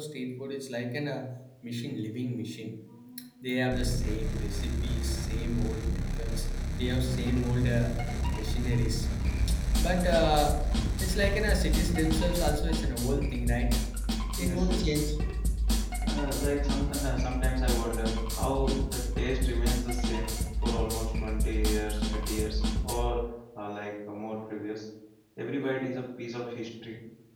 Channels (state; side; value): identical; both; correlation 1.00